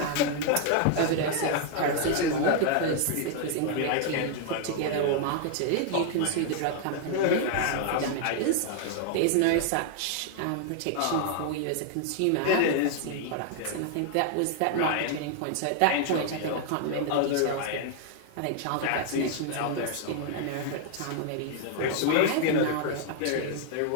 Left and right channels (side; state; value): both; different; correlation 0.00